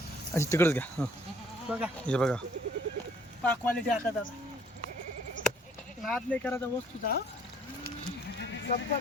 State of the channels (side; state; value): both; normal; correlation 0.60